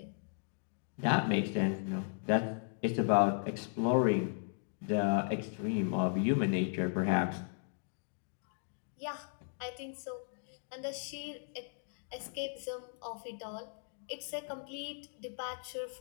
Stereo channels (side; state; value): right; silent; digital silence